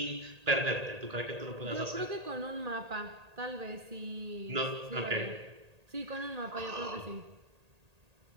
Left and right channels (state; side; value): late; left; 1.8 ms